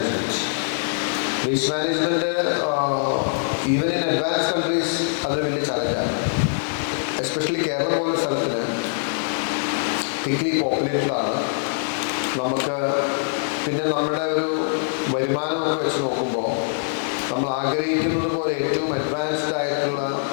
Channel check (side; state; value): right; silent; digital silence